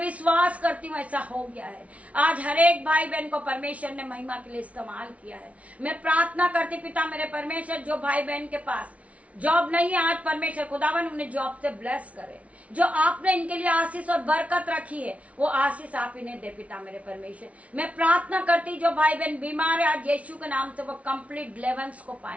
करती हूँ ऐसा हो गया है। आज हर एक भाई बहन को परमेश्वर ने महिमा के लिए इस्तेमाल किया है। मैं प्रार्थना करती पिता मेरे परमेश्वर, जो भाई बहन के पास जॉब नहीं है, आज परमेश्वर खुदावन उन्हें जॉब से ब्लेस करे। जो आपने इनके लिए आशीष और बरकत रखी है वो आशीष आप इन्हें दे पिता मेरे परमेश्वर। मैं प्रार्थना करती, जो भाई बहन बीमार है, आज यीशु के नाम से वो कंप्लीट डिलीवरेंस को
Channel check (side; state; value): left; late; 0.065 ms